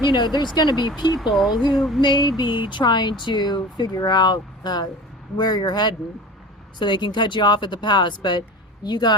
you know, there's going to be people who may be trying to figure out where you're heading so they can cut you off at the pass, but you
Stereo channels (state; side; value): normal; both; correlation 0.36